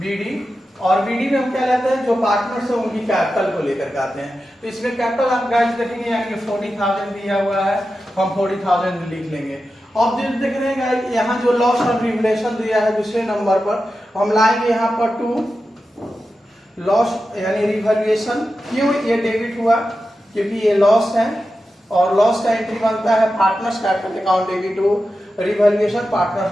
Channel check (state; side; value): normal; both; correlation 0.91